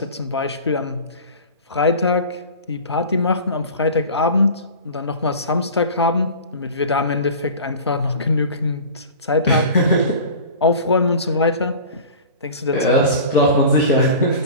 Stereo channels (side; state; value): both; inverted; correlation -0.38